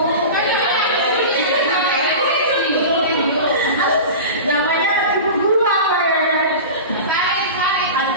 Namanya ibu guru apa ya?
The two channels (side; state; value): both; inverted; correlation -0.31